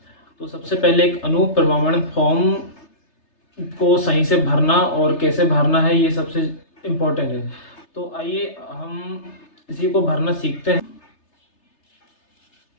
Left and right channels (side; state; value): right; late; 3.3 ms